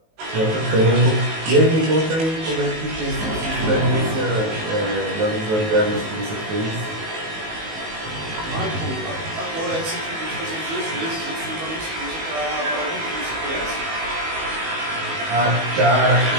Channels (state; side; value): late; left; 19 ms